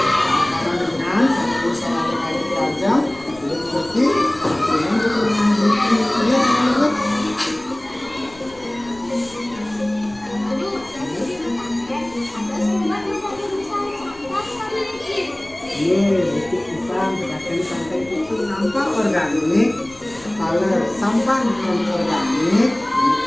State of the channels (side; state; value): left; noise; rumble, 24 dB below the sound